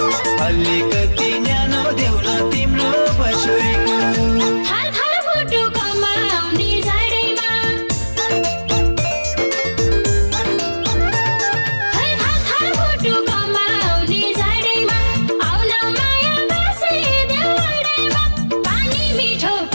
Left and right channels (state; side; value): inverted; both; correlation -1.00